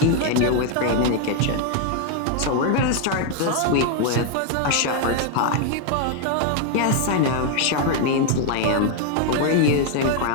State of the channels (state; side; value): different; both; correlation 0.00